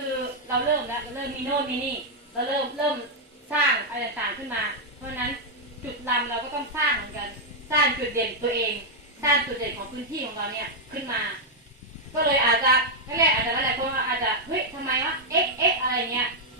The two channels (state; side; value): normal; both; correlation -0.03